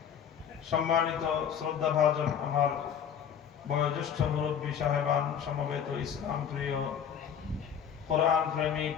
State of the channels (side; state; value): right; quieter; 8.2 dB